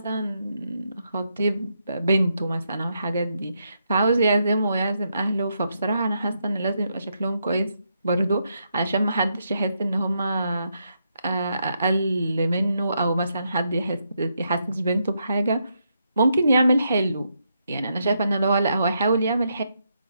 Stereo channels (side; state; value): both; inverted; correlation -0.80